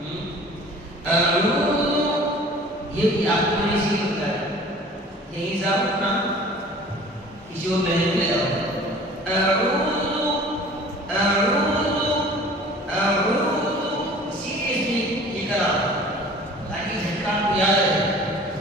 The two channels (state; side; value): normal; both; correlation 0.46